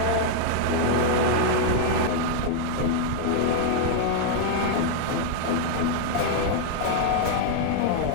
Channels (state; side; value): different; both; correlation 0.00